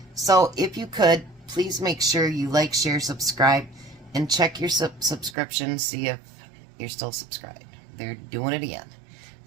So, if you could, please make sure you like, share, subscribe, and check your subscription, see if you're still subscribed. They're doing it again.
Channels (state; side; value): drops out; left; at 5.4 s